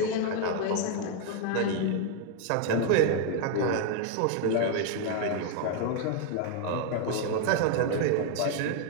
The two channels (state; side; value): different; both; correlation 0.01